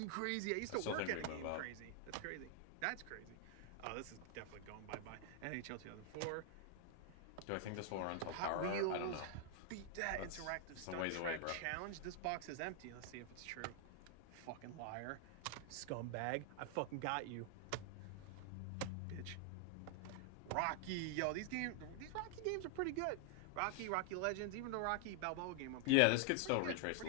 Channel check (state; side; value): different; both; correlation 0.00